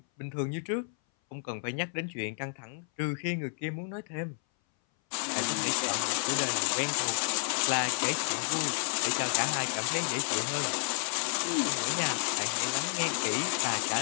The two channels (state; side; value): silent; right; 57 dB below the other